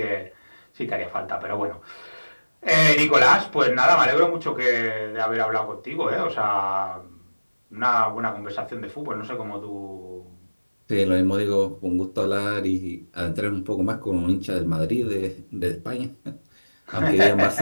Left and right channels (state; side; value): inverted; both; correlation -1.00